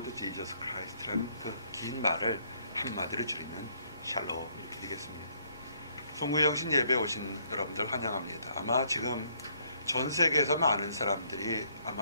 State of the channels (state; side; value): inverted; both; correlation -0.68